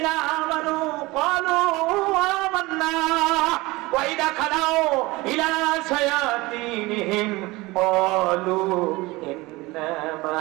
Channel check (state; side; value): quieter; left; 21.7 dB